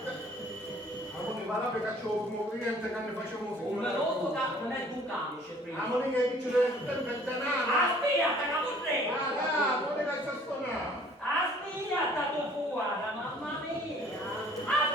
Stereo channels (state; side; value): normal; both; correlation 0.55